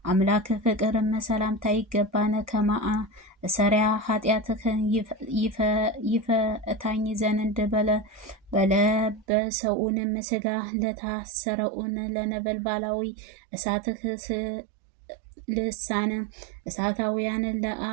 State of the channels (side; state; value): left; drops out; at 9.2 s